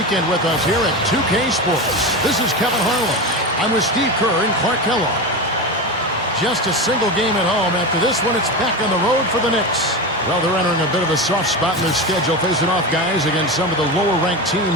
with us here at 2K Sports. This is Kevin Harlan. I'm with Steve Kerr and Clark Kellogg. Just a single game at home. After this one, it's back on the road for the Knicks. Well, they're entering a bit of a soft spot in their schedule, facing off guys against some of the lower-ranked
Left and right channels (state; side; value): normal; both; correlation 0.21